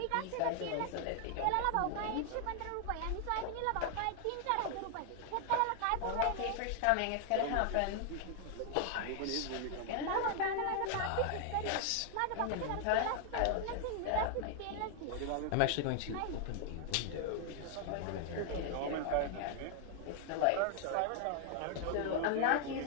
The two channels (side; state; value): both; different; correlation 0.00